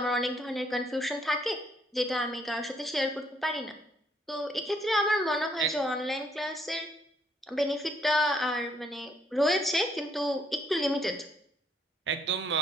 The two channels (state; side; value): normal; both; correlation 0.70